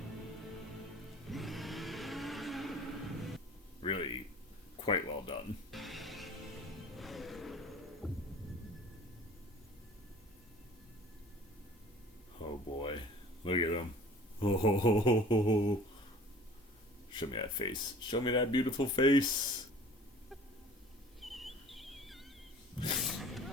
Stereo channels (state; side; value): normal; both; correlation 0.46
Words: Really quite well done. Oh boy. Look at him. Oh. Show me that face. Show me that beautiful face.